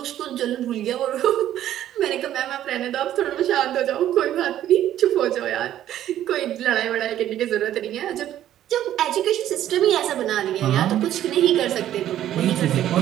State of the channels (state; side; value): quieter; left; 12.0 dB